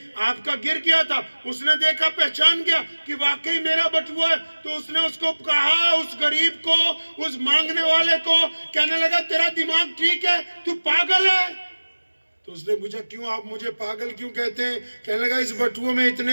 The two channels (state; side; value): inverted; both; correlation -1.00